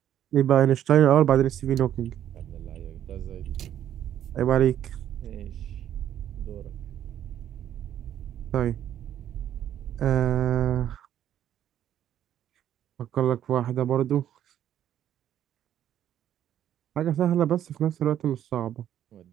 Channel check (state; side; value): quieter; left; 10.8 dB